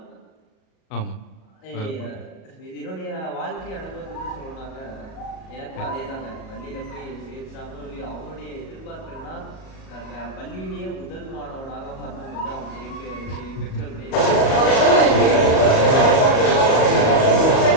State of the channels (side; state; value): right; late; 37 ms